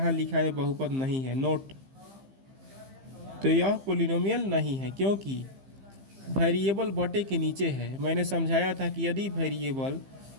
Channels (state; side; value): late; left; 15 ms